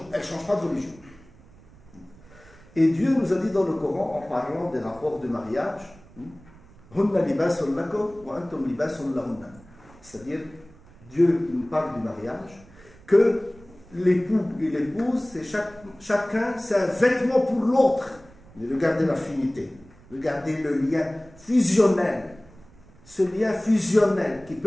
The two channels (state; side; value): noise; right; rumble, 24 dB below the sound